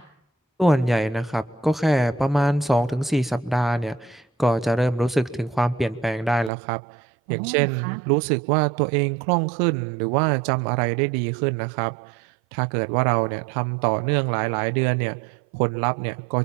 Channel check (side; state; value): left; drops out; at 6.5 s